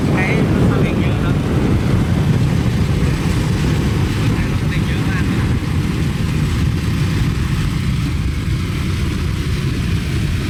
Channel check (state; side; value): identical; both; correlation 1.00